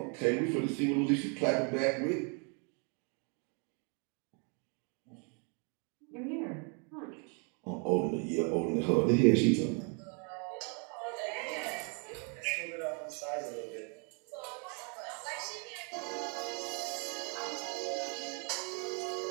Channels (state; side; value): quieter; left; 36.9 dB